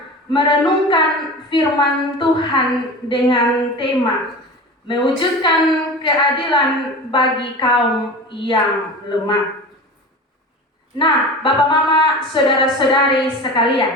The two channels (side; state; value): both; normal; correlation 0.33